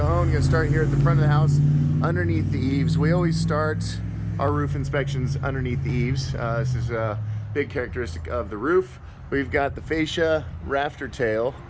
Going to start here at the front of the house underneath the eaves. We always start our roof inspections underneath the eaves. This is a big characteristic of the roof. We've got the fascia, rafter tail,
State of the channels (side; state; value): both; identical; correlation 1.00